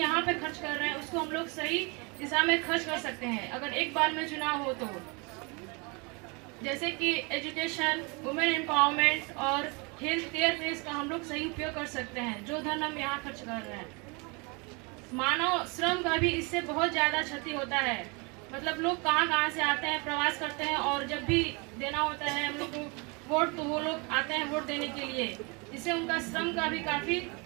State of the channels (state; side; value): quieter; left; 30.1 dB